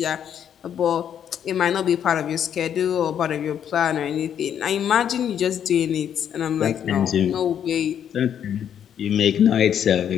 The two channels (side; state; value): right; quieter; 9.1 dB